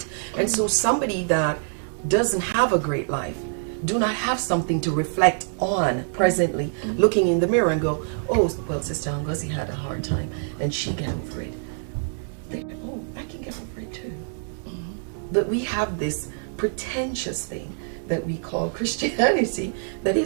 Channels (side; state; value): left; silent; 62 dB below the other